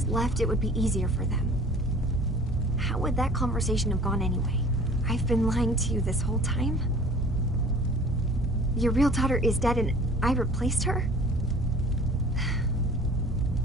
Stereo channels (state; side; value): normal; both; correlation 0.47